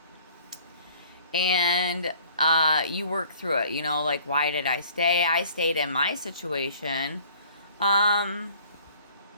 And you work through it. Like, why did I stay? I stayed in my situation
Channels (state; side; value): inverted; both; correlation -0.53